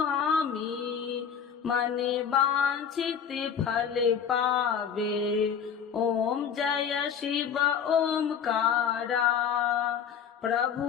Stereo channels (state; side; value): quieter; right; 7.6 dB